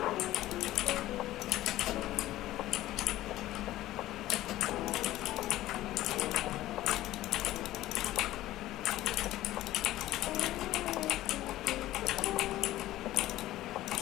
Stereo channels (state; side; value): quieter; right; 15.2 dB